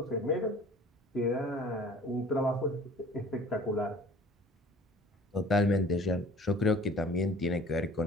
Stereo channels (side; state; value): both; normal; correlation 0.48